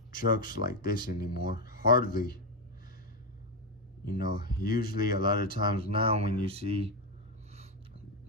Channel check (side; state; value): both; normal; correlation 0.08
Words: trucks like this anymore. Hardly. You know, usually a lot of times now when you see